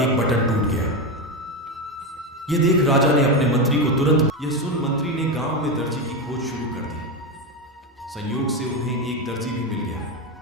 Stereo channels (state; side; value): normal; both; correlation 0.13